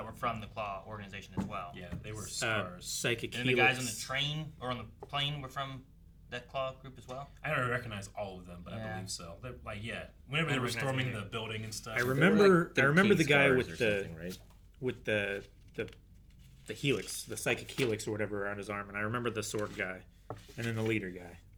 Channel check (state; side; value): identical; both; correlation 1.00